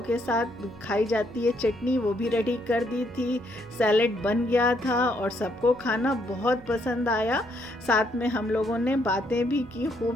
के साथ खाई जाती है चटनी, वो भी रेडी कर दी थी। सैलेड बन गया था और सबको खाना बहुत पसंद आया। साथ में हम लोगों ने बातें भी की खूब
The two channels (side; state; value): right; noise; hum, 22 dB below the sound